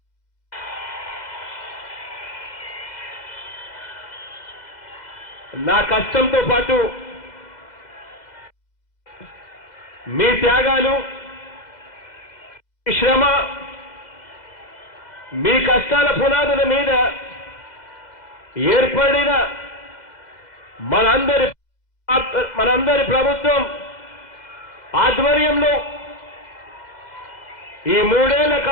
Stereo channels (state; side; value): late; right; 2.0 ms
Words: నా కష్టంతో పాటు మీ త్యాగాలు, శ్రమ, మీ కష్టాల పునాదుల మీద ఏర్పడిన మనందరి ప్రభుత్వం ఆధ్వర్యంలో ఈ 3 ఏళ్ల